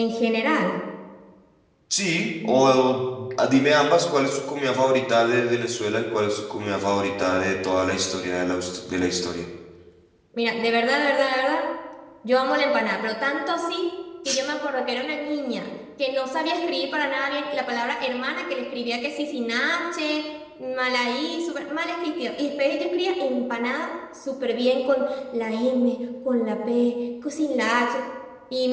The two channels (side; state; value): both; identical; correlation 1.00